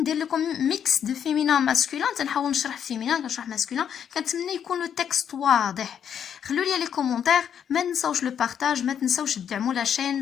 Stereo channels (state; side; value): quieter; right; 8.5 dB